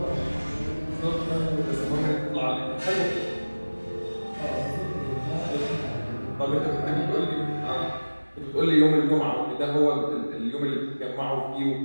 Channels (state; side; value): inverted; both; correlation -1.00